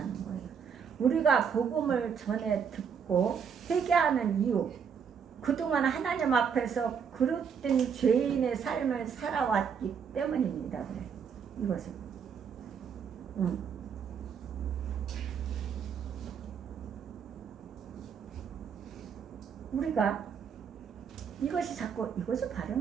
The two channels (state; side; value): quieter; left; 6.9 dB